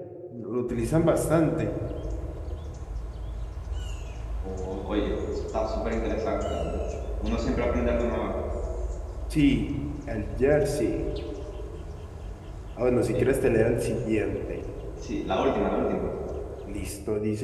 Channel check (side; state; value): both; identical; correlation 1.00